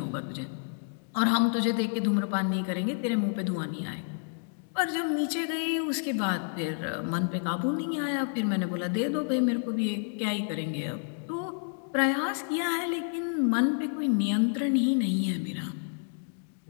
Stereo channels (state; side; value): silent; right; 57 dB below the other